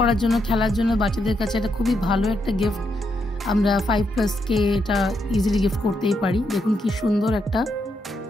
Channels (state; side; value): normal; both; correlation 0.80